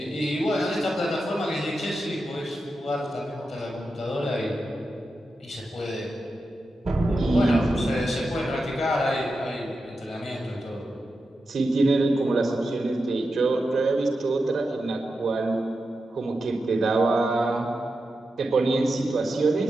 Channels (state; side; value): normal; both; correlation 0.90